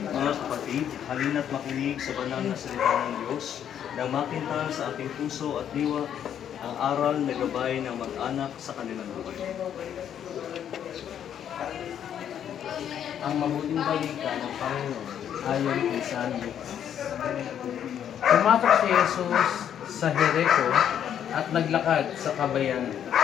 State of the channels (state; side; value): quieter; right; 9.4 dB